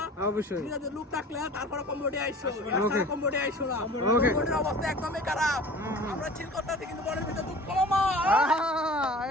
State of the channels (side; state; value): both; normal; correlation 0.42